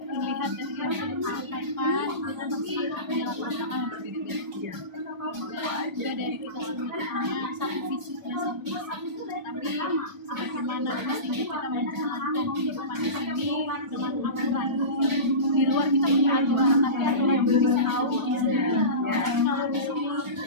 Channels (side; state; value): left; late; 1.1 ms